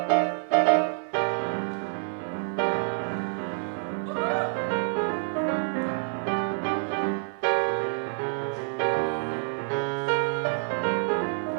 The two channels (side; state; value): left; silent; 56 dB below the other